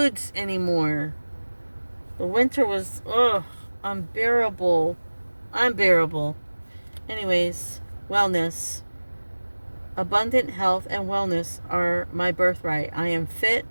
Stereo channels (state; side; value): inverted; both; correlation -1.00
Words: anymore. The winter was, unbearable. Unbearable. Anyways, wellness. Abundant health and wellness are my birthright. I am fit,